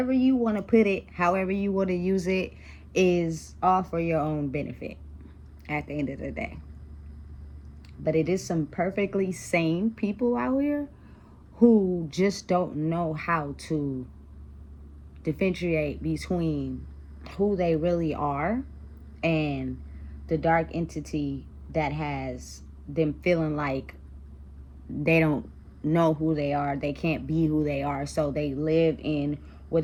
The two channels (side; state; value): both; identical; correlation 1.00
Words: you want to put it, however you want to use it, is all for your own benefit at the end of the day. But it is some perfectly sane people out here who just don't know how to differentiate between who they really are and the dark entity that has them feeling like they don't know who they are, they can't be who they are, so they live in